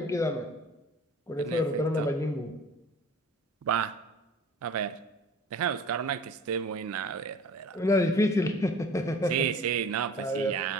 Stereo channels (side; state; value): both; normal; correlation 0.45